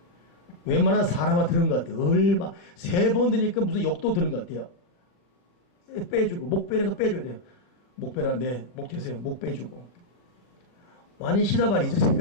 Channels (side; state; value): right; late; 40 ms